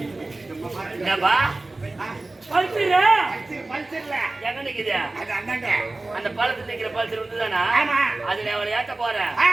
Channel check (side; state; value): left; quieter; 3.0 dB